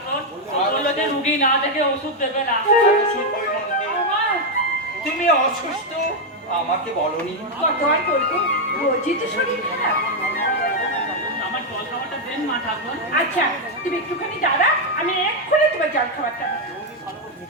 বললো যে রুগী না দেখে ওষুধ দেবে না। তুমি অসুস্থ আমাকে বলনি? আমার জল খাবারটা দেন মা ঠাকুর। আচ্ছা তুমি একটুখানি দাঁড়া, আমি এক্ষুনি তোমার জল খাবারটা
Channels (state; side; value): normal; both; correlation 0.02